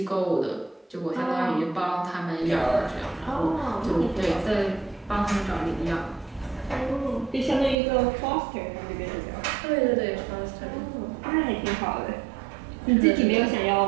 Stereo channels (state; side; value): drops out; left; at 7.8 s